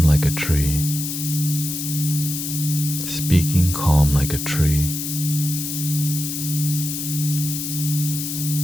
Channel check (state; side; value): noise; left; hiss, 4 dB below the sound